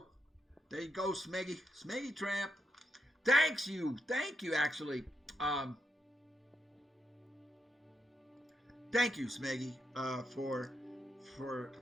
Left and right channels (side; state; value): both; normal; correlation 0.83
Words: There you go, Smeggy. Smeggy Tramp. Thank you, actually. Thank you, Smeggy,